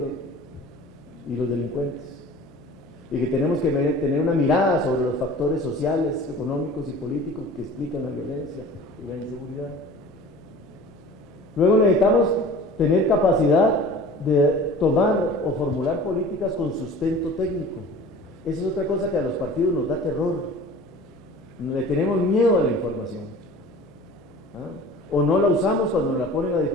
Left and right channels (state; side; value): noise; left; hum, 28 dB below the sound